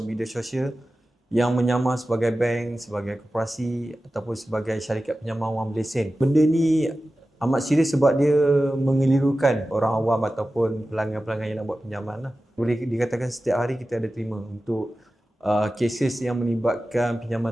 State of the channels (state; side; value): normal; both; correlation 0.94